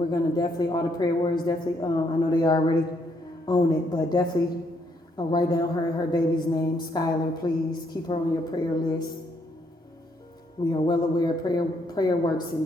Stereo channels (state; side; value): normal; both; correlation 0.72